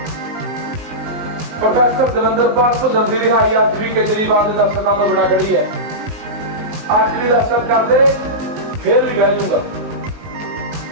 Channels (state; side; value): late; left; 19 ms